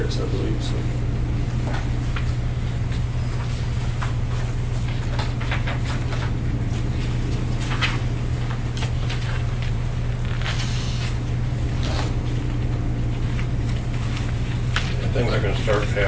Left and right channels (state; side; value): identical; both; correlation 1.00